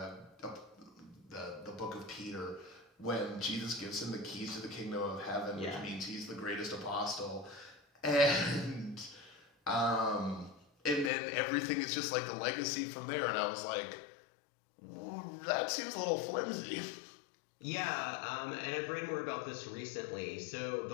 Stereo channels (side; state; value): right; drops out; at 11.1 s